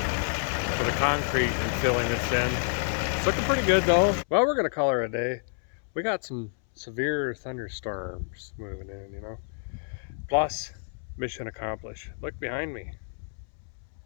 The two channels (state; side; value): silent; right; 59 dB below the other